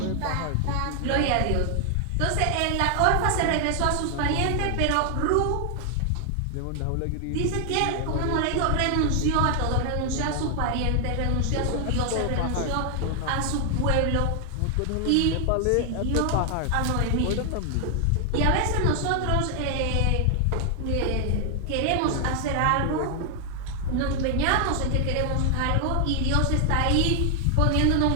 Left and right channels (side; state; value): both; different; correlation 0.00